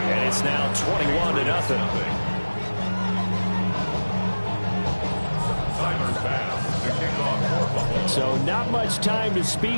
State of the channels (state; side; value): inverted; both; correlation -1.00